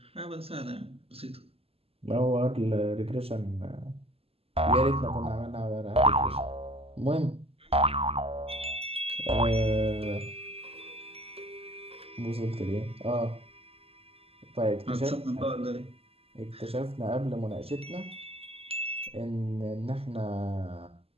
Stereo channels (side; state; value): left; late; 0.28 ms